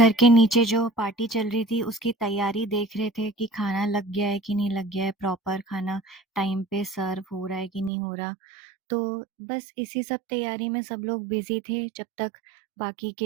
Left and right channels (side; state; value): left; drops out; at 7.9 s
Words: के नीचे जो पार्टी चल रही थी उसकी तैयारी देख रहे थे कि खाना लग गया है कि नहीं लग गया है, प्रॉपर खाना टाइम पे सर्व हो रहा है कि नहीं हो रहा। तो बस इसी सब तैयारी में सब लोग बिज़ी थे, जब तक बाकी